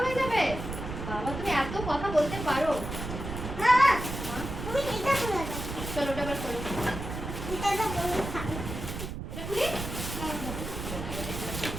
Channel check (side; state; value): right; noise; rumble, 7 dB below the sound